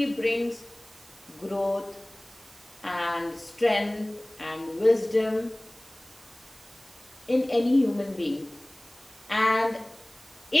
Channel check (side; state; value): right; noise; hiss, 24 dB below the sound